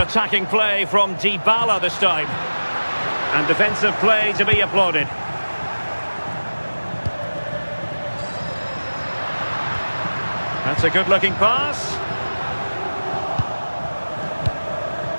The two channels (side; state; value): both; inverted; correlation -1.00